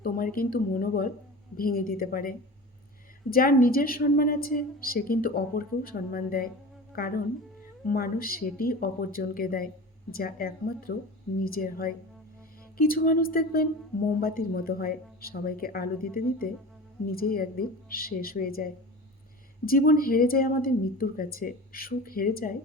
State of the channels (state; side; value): normal; both; correlation 0.34